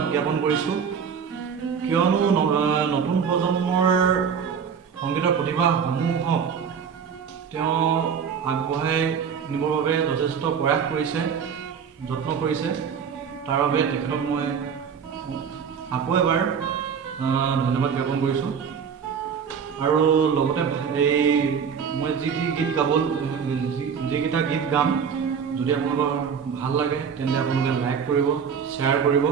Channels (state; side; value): quieter; left; 6.9 dB